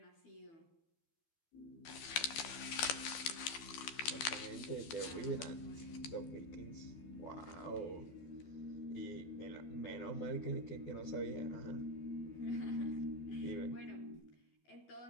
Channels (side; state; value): right; late; 12 ms